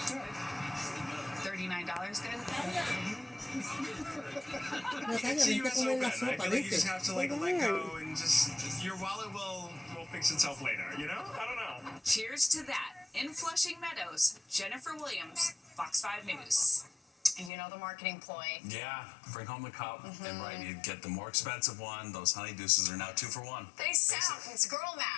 $39 good? See, you so good. I feel like you just have to like let go and just your wallet will fix itself later. You know? I don't know. Cheers to that. In Flushing Meadows, Jennifer Williams, Fox 5 News. You know the marketing ploy. Yeah, bring home the cup, and right, you get the more expensive one. Those Honey Deuces are now 2 for 1. They sound, it's girl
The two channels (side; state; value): right; drops out; at 17.5 s